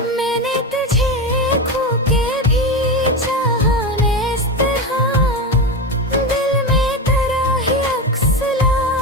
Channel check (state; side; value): normal; both; correlation 0.18